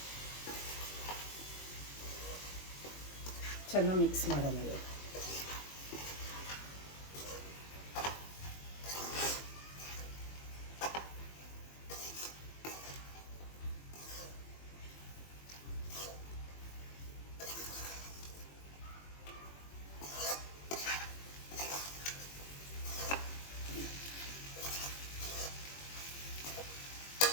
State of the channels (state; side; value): late; right; 21 ms